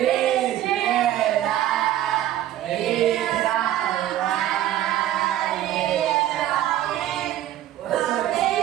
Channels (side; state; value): left; quieter; 12.8 dB